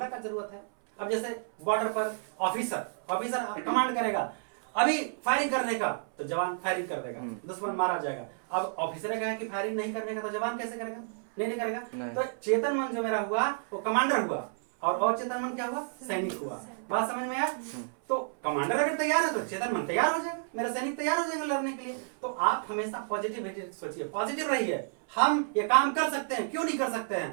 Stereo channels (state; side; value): silent; left; 57 dB below the other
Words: क्या जरूरत है। अब जैसे बॉर्डर पर ऑफिसर कमांड करेगा अभी फायरिंग करने का, तो जवान फायरिंग कर देगा, दुश्मन मारा जाएगा। अब ऑफिसर कहा कि फायरिंग नहीं करने का, तो जवान कैसे करेगा? नहीं करेगा। तो चेतन मन जो मेरा हुआ वो कमांडर हुआ, और अवचेतन मन क्या हुआ? सैनिक हुआ। बात समझ में आया? तो कमांडर अगर तैयार है तो चेतन मन तैयार हो जाएगा, मेरा सैनिक तैयार हो जाएगा लड़ने के लिए। तो आप हमेशा पॉजिटिव सोचिए, पॉजिटिव रहिए। हम ये काम कर सकते हैं, क्यों नहीं कर सकते